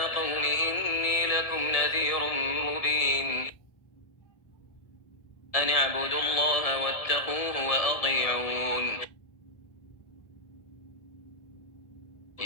قوم إني لكم نذير مبين أن اعبدوا الله واتقوه وأطيعون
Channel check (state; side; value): late; right; 1.7 ms